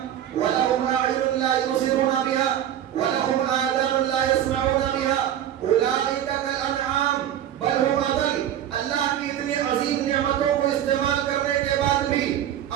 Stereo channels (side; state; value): left; quieter; 10.8 dB